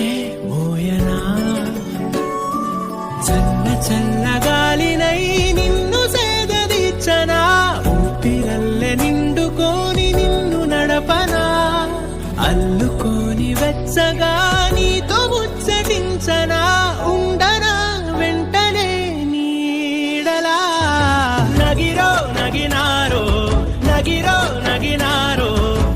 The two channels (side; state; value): both; identical; correlation 1.00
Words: మోయనా. చల్ల చల్లగాలినై నిన్ను సేదదీర్చనా. ఊపిరల్లె నిండుకోని నిన్ను నడపనా. అల్లుకోని వెచ్చగా నీతో ముచ్చటించనా. ఉండనా వెంటనే నీడలా. నగిరో నగినారో నగిరో నగినారో